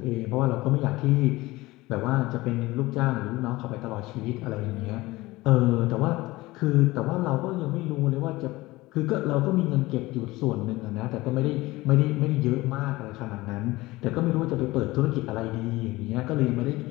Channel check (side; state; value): right; quieter; 19.7 dB